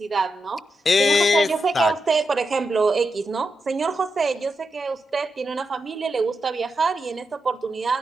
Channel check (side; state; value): both; normal; correlation 0.87